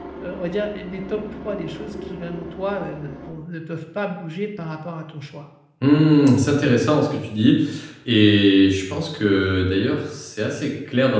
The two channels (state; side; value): identical; both; correlation 1.00